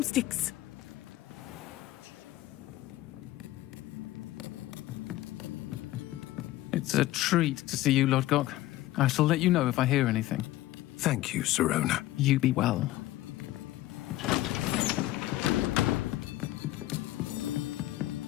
It's a treat to see you, Lodgok. I shall let you know if I hear anything. Thank you, Sirona. You be well.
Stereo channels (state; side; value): quieter; right; 15.9 dB